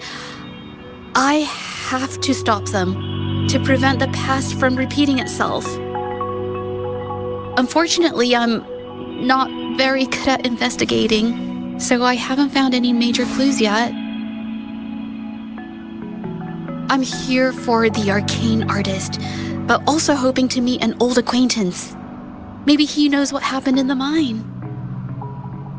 I have to stop them to prevent the past from repeating itself. Unfortunately, I'm not very good at investigating, so I haven't found any major clues yet. I'm here for the arcane artist, but also hoping to meet an old acquaintance. Maybe he knows what happened in the mine.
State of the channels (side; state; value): both; identical; correlation 1.00